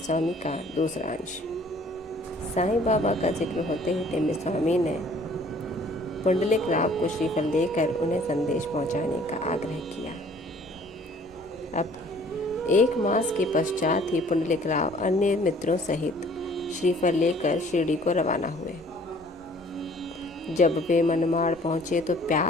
का दूसरा अंश। साईं बाबा का जिक्र होते ही टेम्बे स्वामी ने पुंडलिक राव को श्रीफल देकर उन्हें संदेश पहुंचाने का आग्रह किया। अब 1 मास के पश्चात ही पुंडलिक राव अन्य मित्रों सहित श्रीफल लेकर शिरडी को रवाना हुए। जब वे मनमाड़ पहुंचे तो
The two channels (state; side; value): normal; both; correlation 0.55